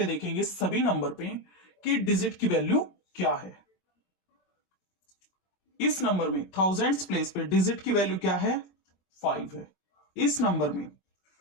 देखेंगे सभी नंबर पे कि डिजिट की वैल्यू क्या है। इस नंबर में थाउजेंड्स प्लेस पे डिजिट की वैल्यू क्या है? 5 है। इस नंबर में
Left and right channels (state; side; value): late; right; 22 ms